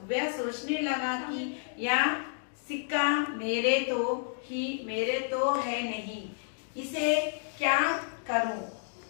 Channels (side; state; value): right; silent; digital silence